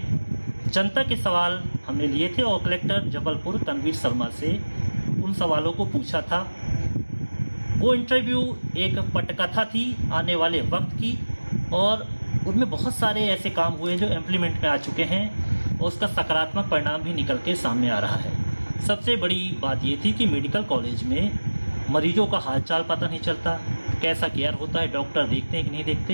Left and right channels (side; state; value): both; inverted; correlation -1.00